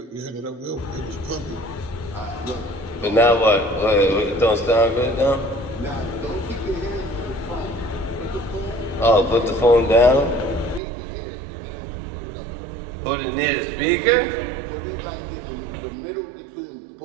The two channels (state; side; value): drops out; left; at 10.8 s